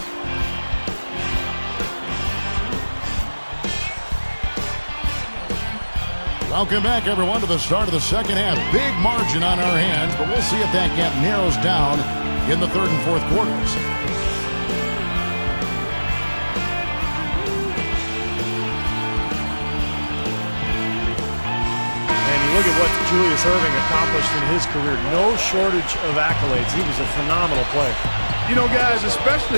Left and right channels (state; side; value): inverted; both; correlation -1.00